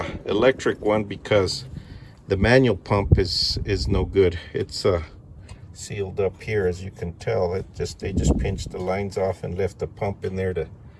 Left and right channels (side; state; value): both; identical; correlation 1.00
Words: electric one because the manual pump is no good. It's sealed up here, as you can tell. They just pinched the lines off and left the pump in there to